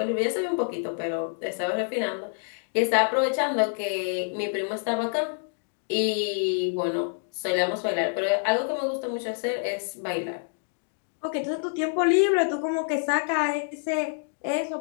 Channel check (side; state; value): right; silent; digital silence